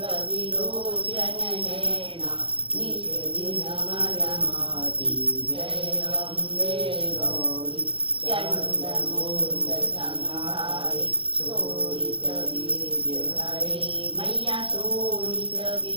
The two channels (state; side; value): late; left; 0.25 ms